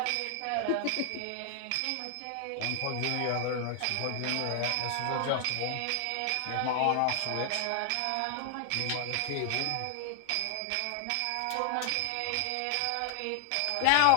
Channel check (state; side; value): different; both; correlation 0.00